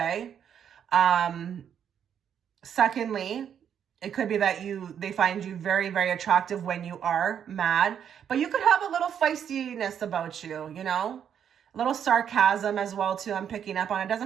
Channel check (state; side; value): quieter; left; 8.6 dB